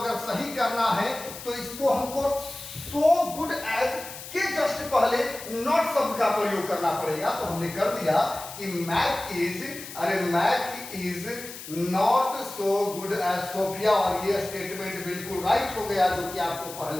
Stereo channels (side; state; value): left; noise; hiss, 12 dB below the sound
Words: सही करना है तो इसको हमको सो गुड एज के जस्ट पहले नॉट शब्द का प्रयोग करना पड़ेगा। तो हमने कर दिया कि Mac is not so good as Sophia, और ये स्टेटमेंट बिल्कुल राइट हो गया, जो कि आपको